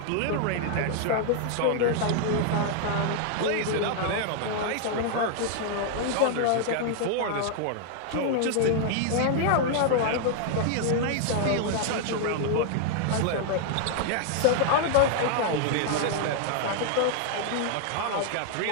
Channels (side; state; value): both; different; correlation 0.00